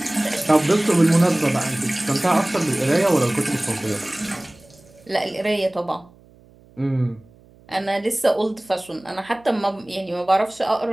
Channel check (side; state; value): right; noise; hum, 27 dB below the sound